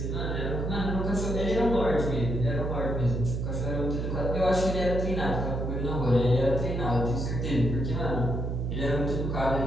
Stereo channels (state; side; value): noise; right; hum, 2 dB below the sound